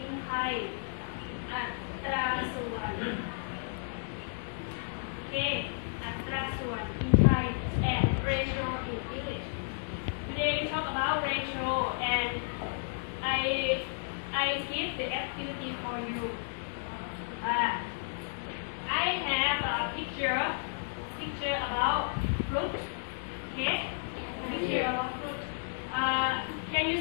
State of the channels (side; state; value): right; silent; digital silence